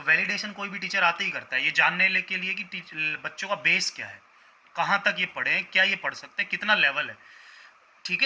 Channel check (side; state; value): both; identical; correlation 1.00